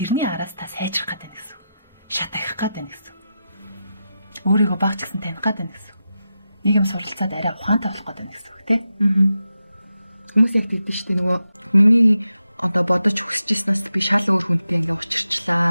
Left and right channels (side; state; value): both; inverted; correlation -0.89